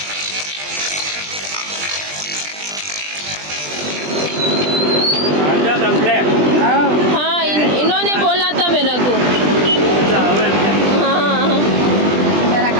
हाँ इन्होंने बोला था मेरे को मेरा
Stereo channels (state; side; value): late; left; 20 ms